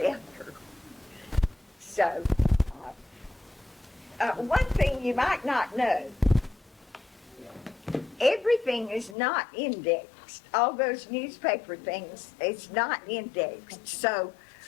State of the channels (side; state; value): right; drops out; at 9.2 s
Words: So, one thing you might not know, everything is not indexed. All those newspaper things, it's not indexed. So,